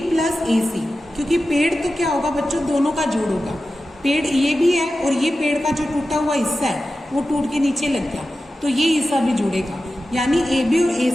प्लस AC, क्योंकि पेड़ तो क्या होगा बच्चों, दोनों का जोड़ होगा। पेड़ ये भी है, और ये पेड़ का जो टूटा हुआ हिस्सा है वो टूट के नीचे लग गया, तो ये हिस्सा भी जुड़ेगा, यानी AB और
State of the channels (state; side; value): normal; both; correlation 0.93